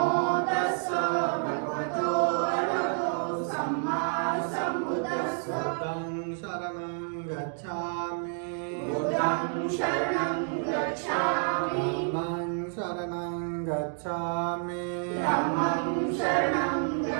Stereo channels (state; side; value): silent; left; 58 dB below the other